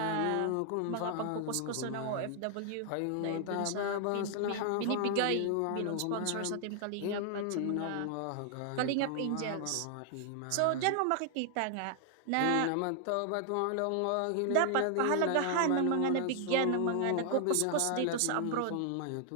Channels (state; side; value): different; both; correlation 0.00